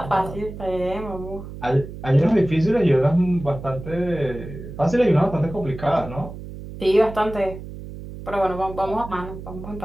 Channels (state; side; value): noise; right; hum, 12 dB below the sound